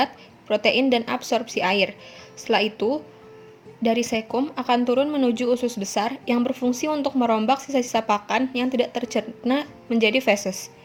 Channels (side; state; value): both; identical; correlation 1.00